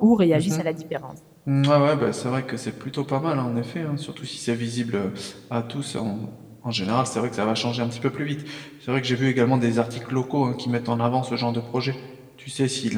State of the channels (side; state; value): both; identical; correlation 1.00